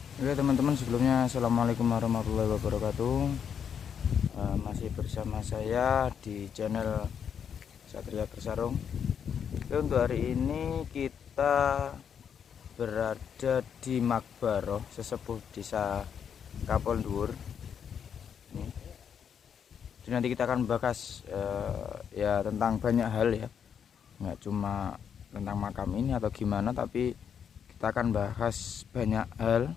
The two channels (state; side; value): quieter; right; 7.7 dB